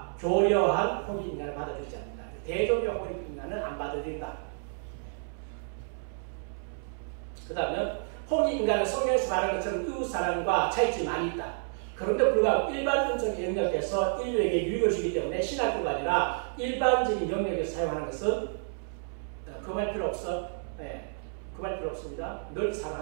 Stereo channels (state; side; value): silent; left; 58 dB below the other